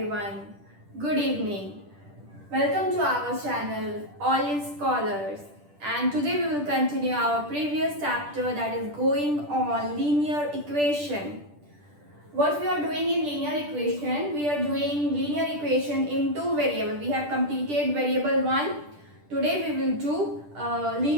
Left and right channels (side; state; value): left; late; 10 ms